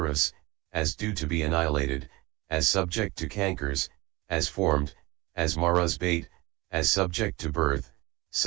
as due to be annihilated, as subject to cankers, as formed, as Mara's bait, as subject to birth,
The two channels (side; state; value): left; quieter; 22.1 dB